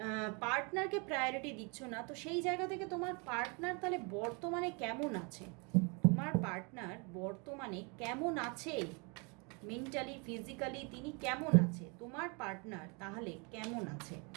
পার্টনারকে প্রায়োরিটি দিচ্ছ না। তো সেই জায়গা থেকে তোমার পার্টনার তাহলে বর্তমানে কেমন আছে, তোমার পার্টনার বর্তমানে কেমন আছে, মেন্টালি ফিজিক্যালি তিনি কেমন আছে, তোমার পার্টনার তাহলে কেমন আছে,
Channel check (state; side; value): quieter; left; 32.3 dB